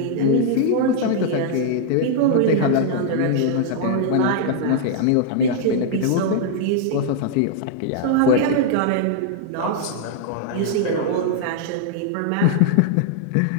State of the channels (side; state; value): both; different; correlation -0.01